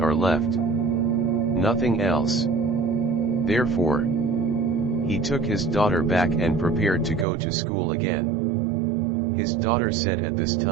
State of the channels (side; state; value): left; drops out; at 7.2 s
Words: left. Nothing else. Therefore, he took his daughter back and prepared to go to school again. His daughter said at this